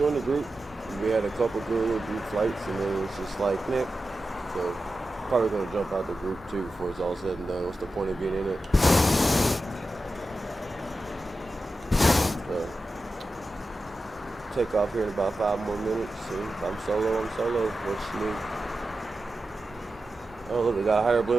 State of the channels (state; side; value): normal; both; correlation 0.92